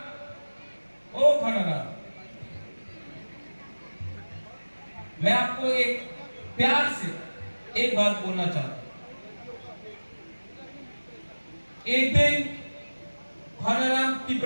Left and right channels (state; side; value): inverted; both; correlation -1.00